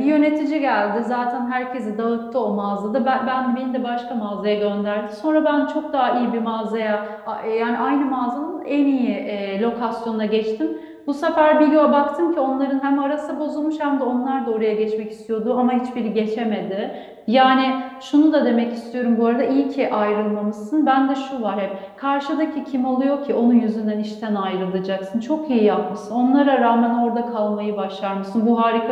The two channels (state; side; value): identical; both; correlation 1.00